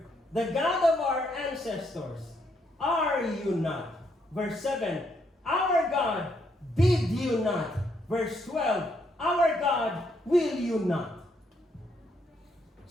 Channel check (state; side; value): normal; both; correlation 0.74